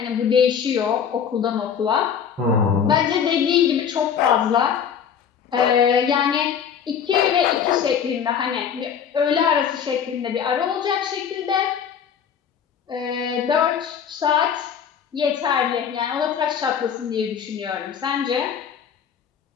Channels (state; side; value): quieter; right; 7.8 dB